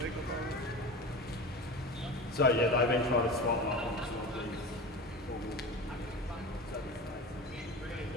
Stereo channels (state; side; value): normal; both; correlation 0.31